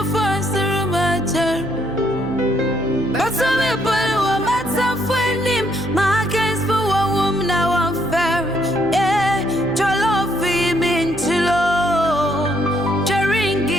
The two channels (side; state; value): right; noise; hum, 12 dB below the sound